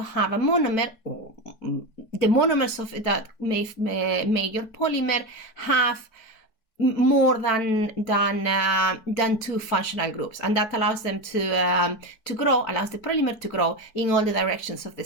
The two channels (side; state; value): right; late; 4.5 ms